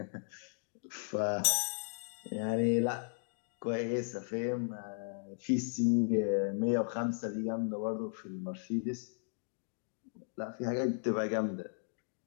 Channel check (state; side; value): silent; right; digital silence